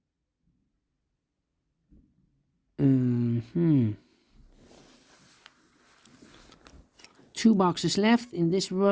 2 boxes left in this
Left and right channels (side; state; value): both; identical; correlation 1.00